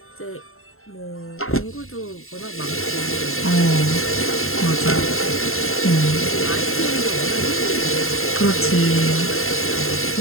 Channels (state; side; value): late; right; 0.61 ms